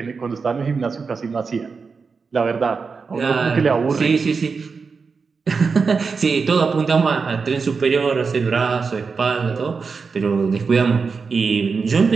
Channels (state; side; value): quieter; left; 5.0 dB